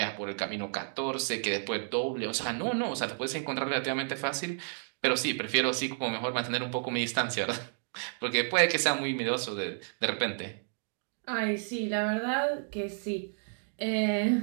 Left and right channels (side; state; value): left; silent; digital silence